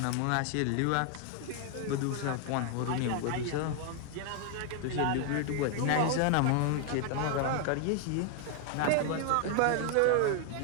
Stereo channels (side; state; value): both; different; correlation 0.00